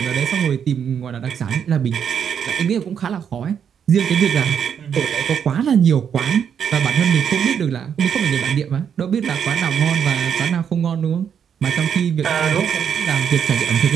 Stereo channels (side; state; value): left; quieter; 7.9 dB